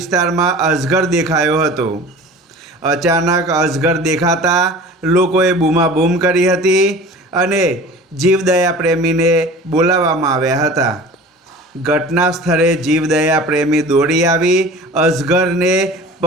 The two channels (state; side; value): normal; both; correlation 0.40